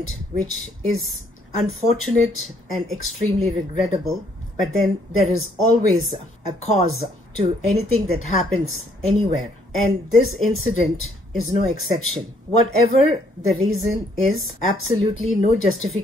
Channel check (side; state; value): both; normal; correlation 0.66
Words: which is unfortunate and extremely regrettable. But then there is always a cause to anything that happens anywhere, and this incident is no exception. Whatever the reason is, absolutely no